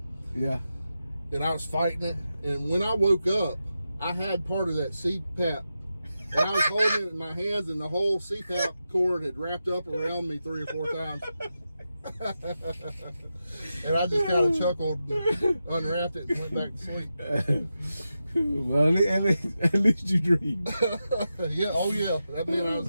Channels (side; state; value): both; inverted; correlation -0.90